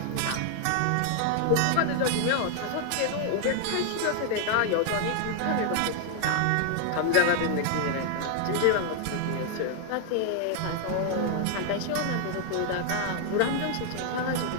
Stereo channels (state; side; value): different; both; correlation 0.00